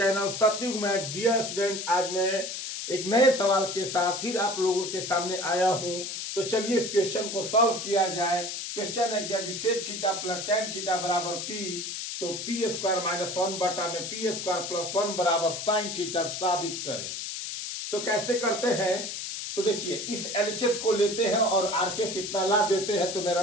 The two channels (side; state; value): left; noise; hiss, 5 dB below the sound